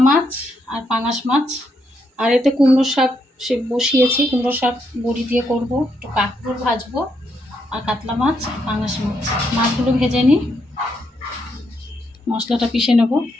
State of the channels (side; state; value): both; normal; correlation 0.78